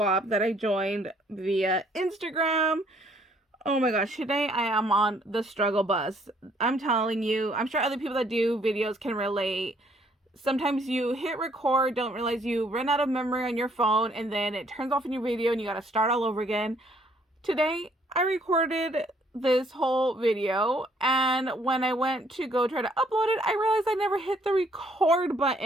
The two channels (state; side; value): normal; both; correlation 0.65